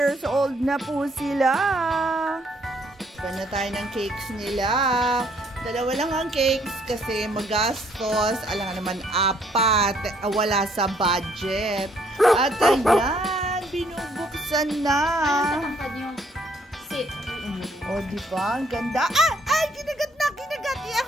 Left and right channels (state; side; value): normal; both; correlation 0.66